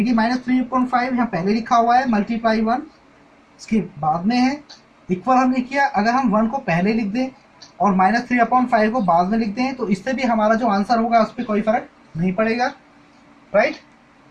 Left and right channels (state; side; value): identical; both; correlation 1.00